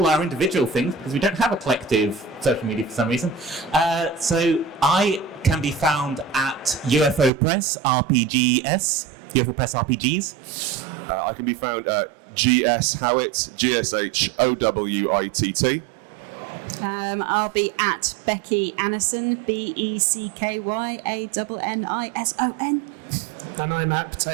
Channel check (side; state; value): left; drops out; at 7.3 s